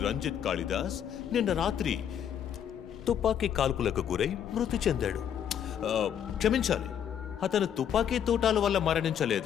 రంజిత్ కాళిదాస్ నిన్న రాత్రి తుపాకీ కాల్పులకు గురై మృతి చెందాడు. క్షమించాలి, అతను తుపాకీ తూటాల వల్ల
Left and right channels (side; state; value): right; quieter; 9.1 dB